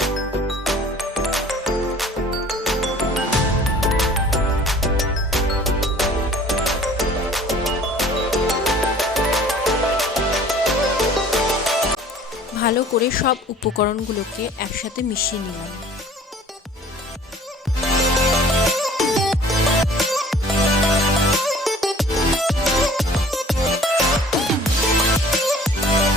ভালো করে সব উপকরণগুলোকে একসাথে মিশিয়ে নিলাম।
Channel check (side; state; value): both; normal; correlation 0.50